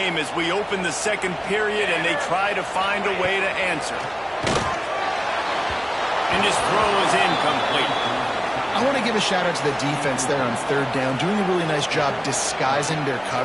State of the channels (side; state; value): both; identical; correlation 1.00